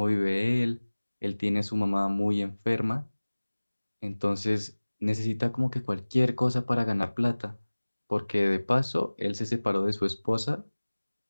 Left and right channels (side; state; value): both; inverted; correlation -1.00